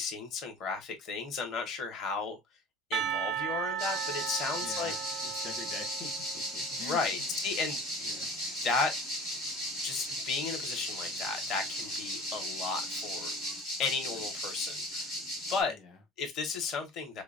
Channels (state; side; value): normal; both; correlation 0.41